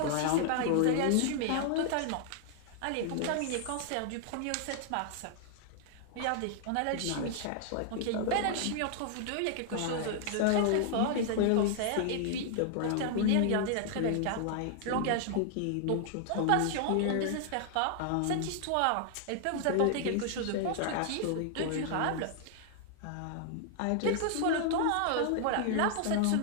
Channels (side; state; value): both; different; correlation -0.01